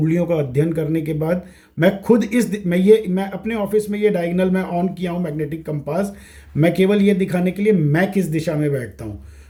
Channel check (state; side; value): identical; both; correlation 1.00